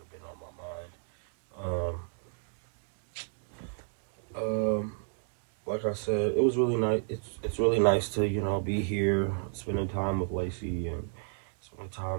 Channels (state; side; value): silent; left; 56 dB below the other